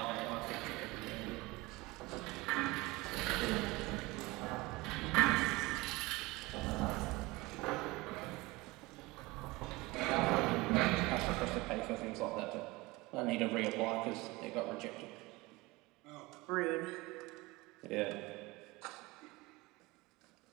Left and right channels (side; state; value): left; quieter; 22.2 dB